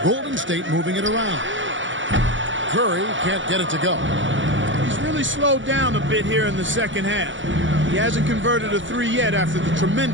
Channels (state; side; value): late; left; 0.55 ms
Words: Golden State moving it around. Curry can't get it to go. He's really slowed down a bit here in the second half. He hasn't converted a three yet after the